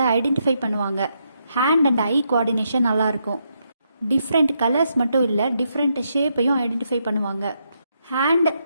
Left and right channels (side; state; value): both; inverted; correlation -0.79